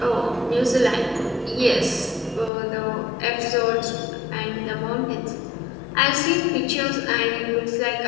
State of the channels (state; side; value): drops out; right; at 2.5 s